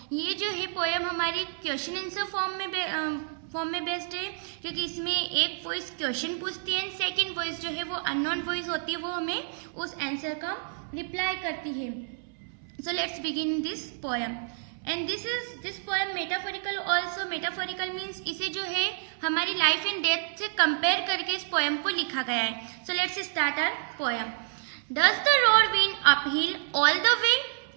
ये जो है poem हमारी question answer form में बेस्ड है क्योंकि इसमें एक वॉइस क्वेश्चन पूछती है एंड सेकंड वॉइस जो है वो अननोन वॉइस होती है, वो हमें उस आंसर का रिप्लाई करती है. So let's begin this poem and this poem metaphorical also. Metaphorical means इसे जो है हमारी लाइफ एंड डेथ से कंपेयर करके इस पोएम को लिखा गया है. So let's start our poem. Does the road wind uphill all the way?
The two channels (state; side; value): silent; left; 59 dB below the other